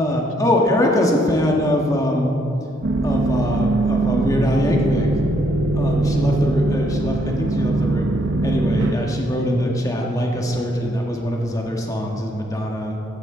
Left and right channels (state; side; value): normal; both; correlation 0.71